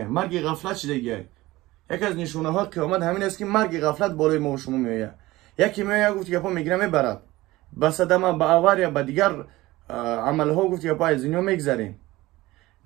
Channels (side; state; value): left; quieter; 18.6 dB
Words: مرگ غفلت شدگه. یک از نشونه ها قیامت همین است که مرگ غفلت بالای ما و شما میآید. یکی میآید گفت که پا میگیره میبرد، به صدمه به آور یا به دیگر عمل ها گفت که پا از دنیا میگذریم.